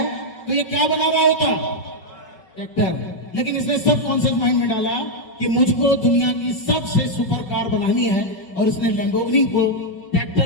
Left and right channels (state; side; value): late; right; 5.3 ms